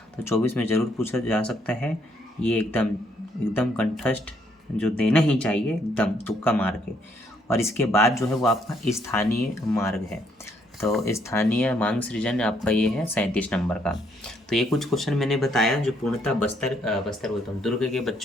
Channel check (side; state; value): both; normal; correlation 0.70